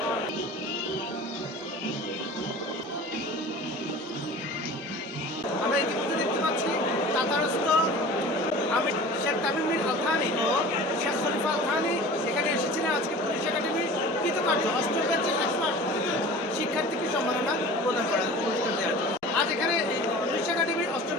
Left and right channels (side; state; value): both; normal; correlation 0.40